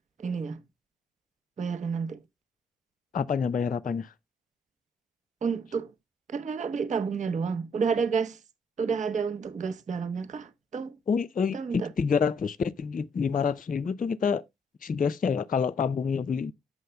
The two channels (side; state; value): both; normal; correlation 0.69